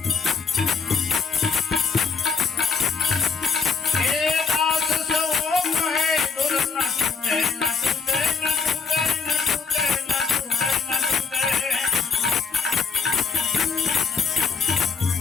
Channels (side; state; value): right; quieter; 5.3 dB